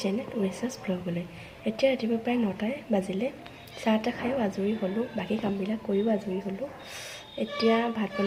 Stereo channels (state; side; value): identical; both; correlation 1.00